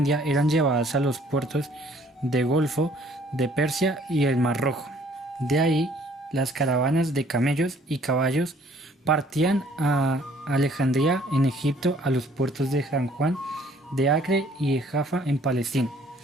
eran llevadas a los puertos del Golfo de Persia y el Mar Rojo. De ahí, las caravanas de camellos y caballos partían a Alejandría en Egipto, a los puertos de San Juan de Acre y de Jaffa en Palestina.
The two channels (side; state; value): both; normal; correlation 0.59